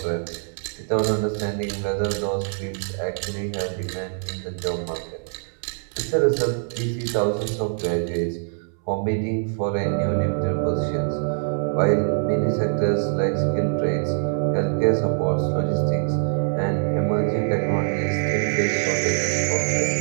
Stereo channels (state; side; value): silent; left; 61 dB below the other